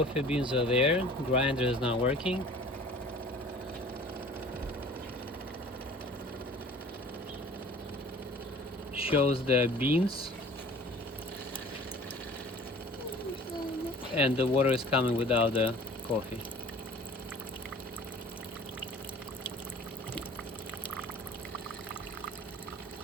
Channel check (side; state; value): both; normal; correlation 0.47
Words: beans are there. Grinder is not working. Shows the beans, and the water is coming without the coffee.